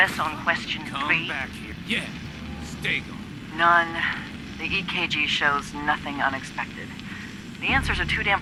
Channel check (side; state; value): both; identical; correlation 1.00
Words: on Question 3? Back here. Yeah. Stay gone. None. The EKG shows nothing unexpected. The answers are too damn